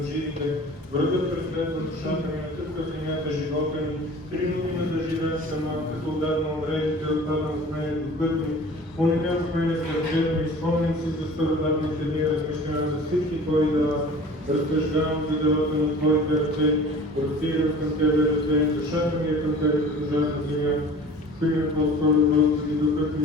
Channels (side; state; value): both; normal; correlation 0.43